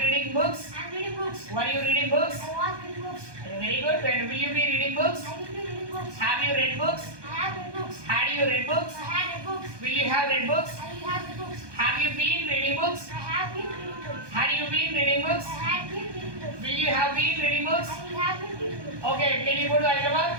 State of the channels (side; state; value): left; late; 1.2 ms